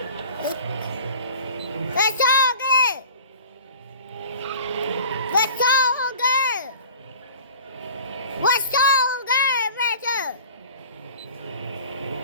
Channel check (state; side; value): inverted; both; correlation -0.43